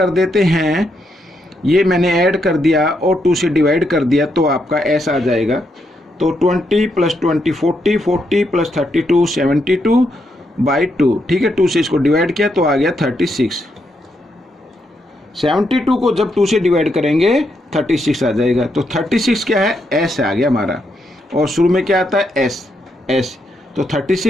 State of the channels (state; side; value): normal; both; correlation 0.79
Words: देते हैं, ये मैंने ऐड कर दिया और 2 से डिवाइड कर दिया, तो आपका एस आ जाएगा। तो 20 प्लस 20 40, 40 प्लस 32 72 बाई 2। ठीक है, 2 से इसको डिवाइड किया तो आ गया 36। 72 को जब 2 से डिवाइड करेंगे 36 आ जाएगा, तो 36 क्या है एस आ गया हमारा, और शुरू में क्या आता है एस, तो